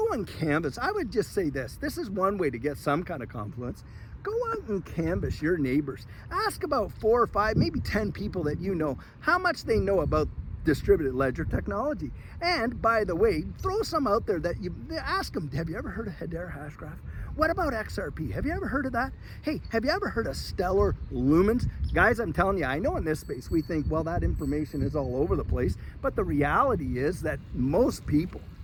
and canvas. I would just say this is one way to get some kind of confluence. Go out and canvas your neighbors. Ask about 4 or 5, maybe 10 people that you know, how much they know about distributed ledger technology. And by the way, throw some out there that you ask them, have you ever heard of Hedera Hashgraph? What about XRP? Have you ever heard of that? Hey, have you ever heard of stellar lumens? Guys, I'm telling you, I know in this space we think, well, that information is all over the place, but the reality is that most people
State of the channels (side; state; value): both; identical; correlation 1.00